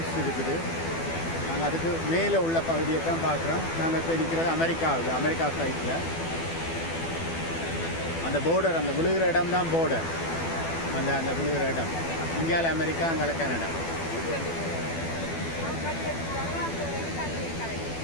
இருக்குது. நாங்கள் அதுக்கு மேலே உள்ள பகுதியை தான் பார்க்குறோம். நாங்கள் இப்போ நிற்கிறது அமெரிக்கா சைட்டில். அந்த போர்டர், அந்த விழுகிற இடம் தான் போர்டர். அந்த விழுகிற இடம் இந்தியாவில் அமெரிக்கா, அங்கே கனடா.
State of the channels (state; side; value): late; right; 12 ms